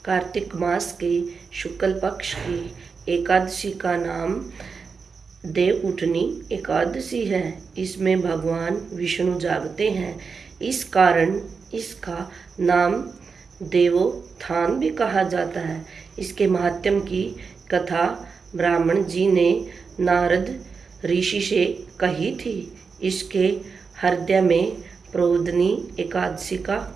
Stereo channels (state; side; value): quieter; left; 5.2 dB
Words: कार्तिक मास के शुक्ल पक्ष की एकादशी का नाम देव उठनी एकादशी है। इसमें भगवान विष्णु जागते हैं, इस कारण इसका नाम देवोत्थान भी कहा जाता है। इसके महात्म्य की कथा ब्राह्मण जी ने नारद ऋषि से कही थी। इसके हृदय में प्रोदनी एकादशी का